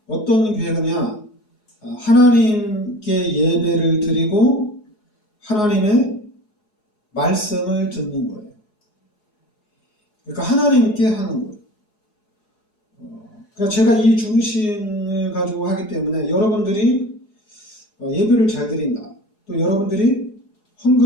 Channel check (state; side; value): late; right; 4.7 ms